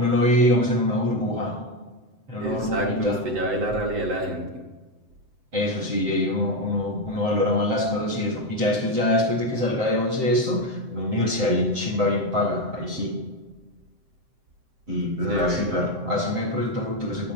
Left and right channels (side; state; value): left; late; 7.8 ms